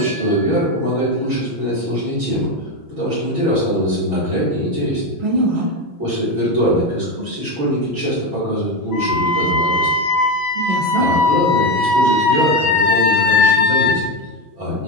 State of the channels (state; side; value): late; left; 6.2 ms